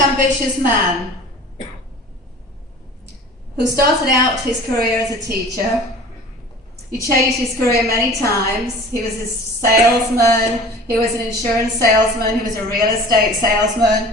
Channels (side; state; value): both; normal; correlation 0.42